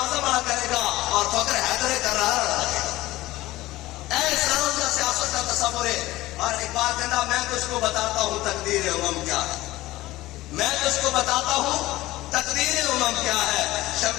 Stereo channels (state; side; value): quieter; right; 17.6 dB